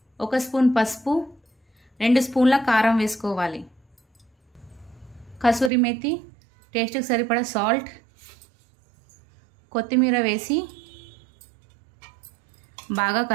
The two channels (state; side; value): drops out; left; at 5.7 s